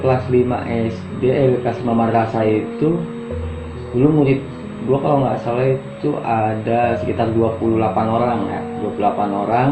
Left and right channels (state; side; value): identical; both; correlation 1.00